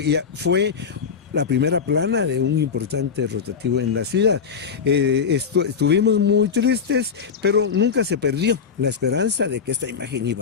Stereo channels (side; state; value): right; quieter; 6.3 dB